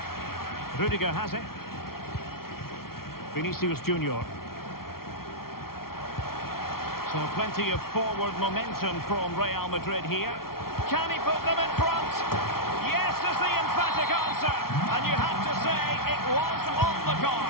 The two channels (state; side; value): late; right; 0.94 ms